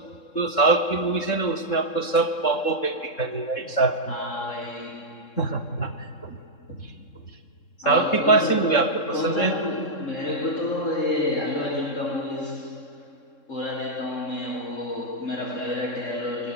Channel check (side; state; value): right; late; 3.6 ms